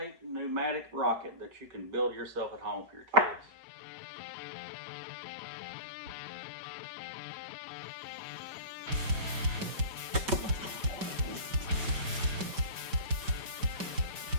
pneumatic rocket that you can build yourself at home for your kids.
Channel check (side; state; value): left; late; 5.2 ms